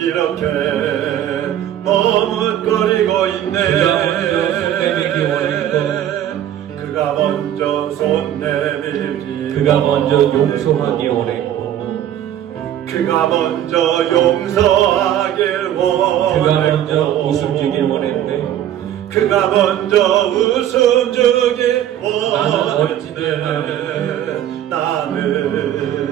머뭇거리고 있네. 그가 먼저 손 내밀지 그가 먼저 용서하기 원했고 그가 먼저 용서하길 원했고 그가 먼저 웃음 주길 원했네. 그가 먼저 웃음 주길 원했네.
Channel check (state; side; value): quieter; left; 11.3 dB